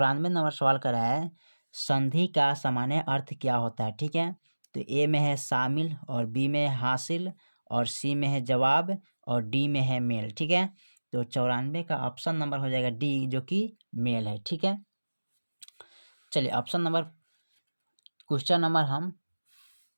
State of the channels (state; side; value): inverted; both; correlation -1.00